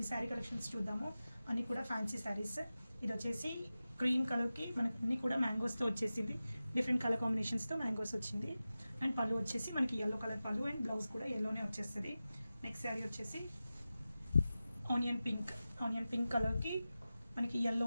శారీ కలెక్షన్స్ చూద్దాము. అన్నీ కూడా ఫ్యాన్సీ శారీస్. ఇది వచ్చేసి క్రీమ్ కలర్కి మనకి అన్నీ కూడా మ్యాంగోస్తో వచ్చేసింది. డిఫరెంట్ కలర్ కాంబినేషన్స్తో మ్యాంగోస్ వచ్చింది. అండ్ పళ్ళు వచ్చేసి మనకి ఎల్లో కలర్ పళ్ళు అండ్ బ్లౌజ్ కూడా ఎల్లోనే వచ్చేస్తుంది. నెక్స్ట్ శారీ వచ్చేసి ఆనియన్ పింక్ కలర్కి మనకి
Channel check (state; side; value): inverted; both; correlation -0.95